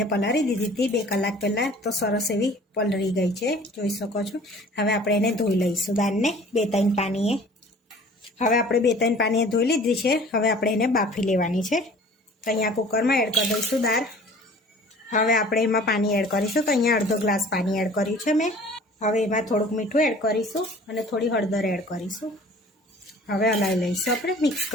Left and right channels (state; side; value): normal; both; correlation 0.48